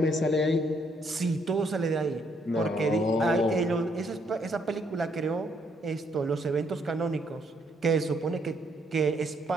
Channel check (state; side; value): normal; both; correlation 0.71